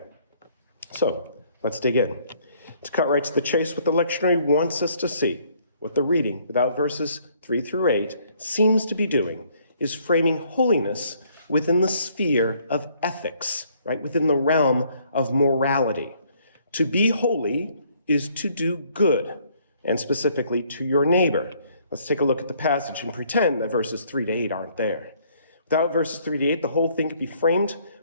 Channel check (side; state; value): both; inverted; correlation -0.64